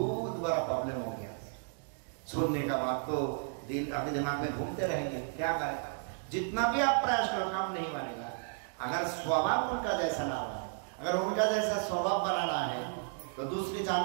बड़ा प्रॉब्लम हो गया। सुनने का बात तो दिल आपके दिमाग में घूमते रहेंगे, क्या करें? जितना भी आप प्रयास करो काम नहीं बनेगा। अगर स्वभाव उनका जैसा ना हो, अगर उनका जैसा स्वभाव बनाना है तो दूसरे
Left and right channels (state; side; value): silent; left; 56 dB below the other